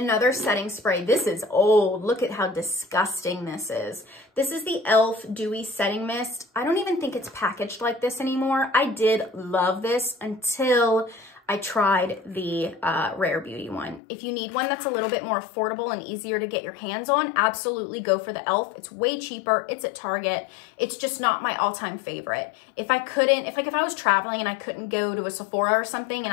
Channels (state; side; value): drops out; right; at 14.0 s